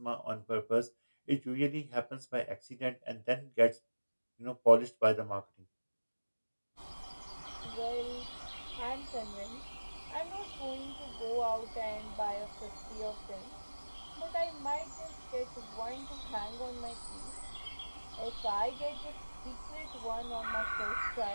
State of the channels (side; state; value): both; inverted; correlation -1.00